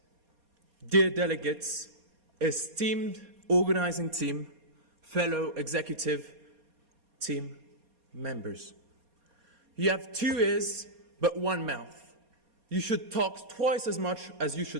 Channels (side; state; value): left; late; 4.2 ms